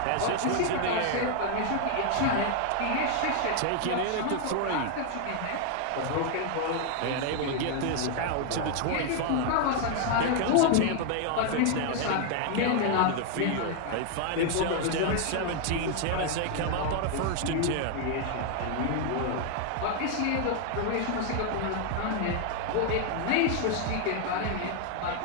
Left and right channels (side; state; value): both; different; correlation 0.00